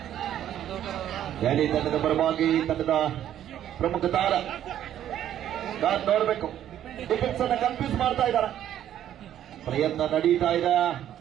ದೆಹಲಿ ತಂಡದ ಪರವಾಗಿ ತಂಡದ ಪ್ರಮುಖ ತಾರ ನೋಡಬೇಕು. ಡಿಫೆನ್ಸ್ ಅನ್ನ ಕನ್ಫ್ಯೂಸ್ ಮಾಡ್ತಾ ಇದ್ದಾರೆ. ಪ್ರಯತ್ನ ನಡೀತಾ ಇದೆ.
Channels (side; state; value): left; quieter; 11.1 dB